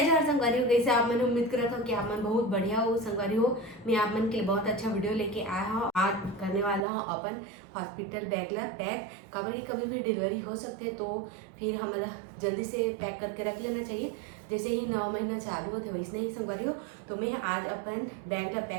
जवाहर संगवारी हो। कैसे आप? मैंने उम्मीद करा था कि आप मन बहुत बढ़िया हो संगवारी हो। मैं आप मन के लिए बहुत अच्छा वीडियो लेके आया हूँ। आज करने वाला हूँ अपन हॉस्पिटल बैग ला पैक। कभी भी डिलीवरी हो सकते तो फिर हमारा जल्दी से पैक करके रख लेना चाहिए। जैसे ही 9 महीना चालू होते वैसे ही संगवारी हो। तो मैं आज अपन बैग ला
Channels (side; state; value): left; drops out; at 6.9 s